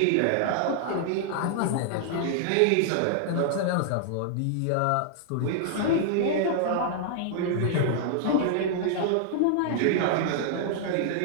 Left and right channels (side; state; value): both; different; correlation -0.01